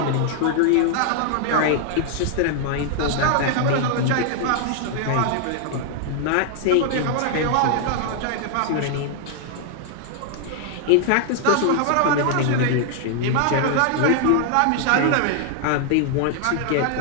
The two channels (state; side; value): different; both; correlation 0.00